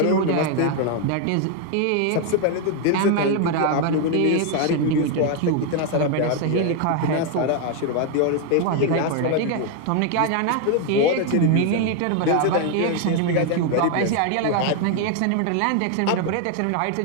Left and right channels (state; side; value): different; both; correlation 0.01